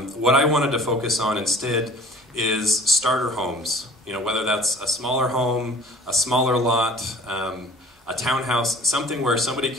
I wanted to focus on instead is starter homes. You know, whether that's a smaller home, a smaller lot, a townhouse, something where somebody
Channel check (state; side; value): normal; both; correlation 0.47